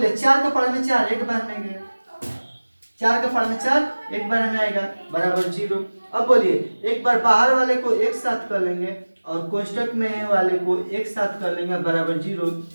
4 का पावर में 4 एक बार में गए, 4 का पावर में 4 एक बार में आएगा बराबर 0। अब बोलिए एक बार बाहर वाले को एक साथ कर लेंगे और कोष्टक में वाले को एक साथ कर लेंगे बराबर 0,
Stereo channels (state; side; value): inverted; both; correlation -1.00